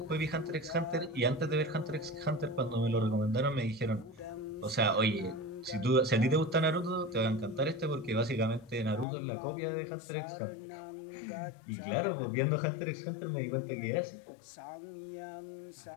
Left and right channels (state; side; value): drops out; right; at 9.1 s